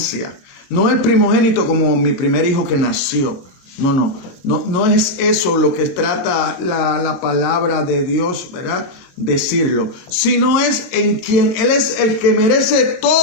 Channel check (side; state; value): right; late; 22 ms